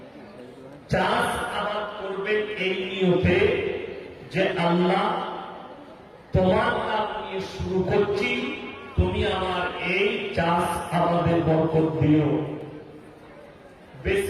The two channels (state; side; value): identical; both; correlation 1.00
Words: চাষ আবাদ করবেন এই নিয়তে যে আল্লাহ তোমার নাম নিয়ে শুরু করছি, তুমি আমার এই চাষ আবাদের বরকত দিও।